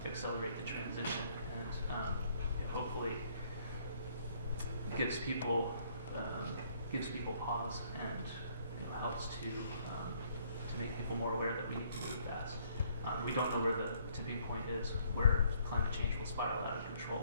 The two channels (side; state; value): both; inverted; correlation -0.65